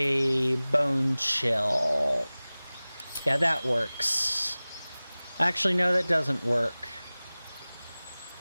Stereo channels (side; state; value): both; inverted; correlation -0.99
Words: Bone Chill. Yeah, that works. Actually, no, that doesn't work.